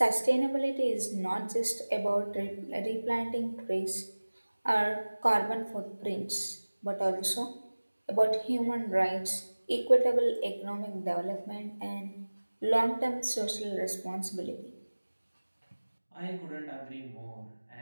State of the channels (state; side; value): inverted; both; correlation -1.00